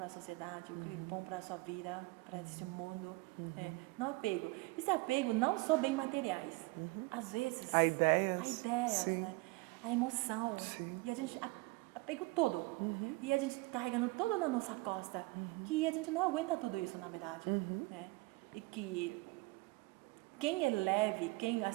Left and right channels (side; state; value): left; quieter; 24.1 dB